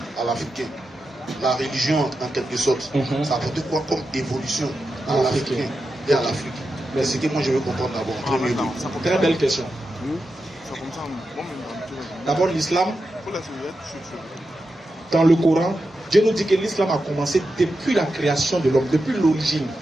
La religion, en quelque sorte, ça a apporté quoi comme évolution à l'Africain et à l'Afrique? Mais c'est ce que moi je veux comprendre d'abord. Très belle question. D'abord, l'islam, dans le Coran, Dieu nous dit que l'islam a commencé depuis la création de l'homme, depuis l'origine.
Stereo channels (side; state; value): both; normal; correlation 0.89